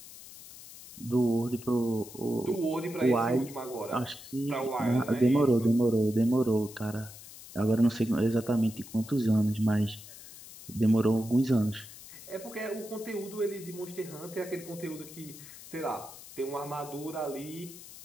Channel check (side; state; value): left; noise; hiss, 16 dB below the sound